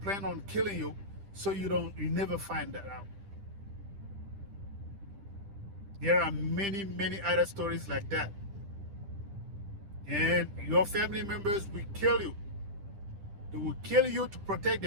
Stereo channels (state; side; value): late; left; 10 ms